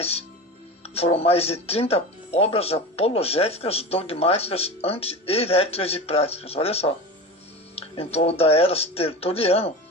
Foram mais de 30 obras apologéticas, dogmáticas, anti-heréticas e práticas. Olha só. Em toda a era Tertuliano,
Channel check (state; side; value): normal; both; correlation 0.29